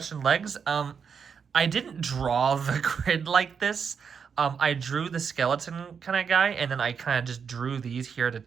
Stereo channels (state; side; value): quieter; left; 6.5 dB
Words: legs. I didn't draw the grid like this. I drew the skeleton kind of guy, and then I kind of just drew these here to